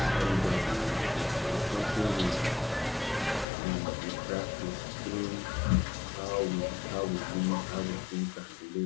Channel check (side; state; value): right; drops out; at 3.5 s